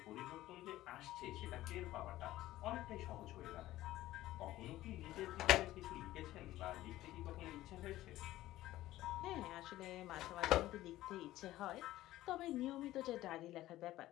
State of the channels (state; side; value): quieter; right; 15.5 dB